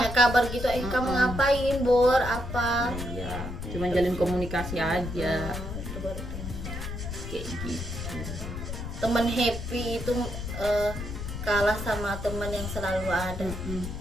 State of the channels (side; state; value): left; noise; rumble, 7 dB below the sound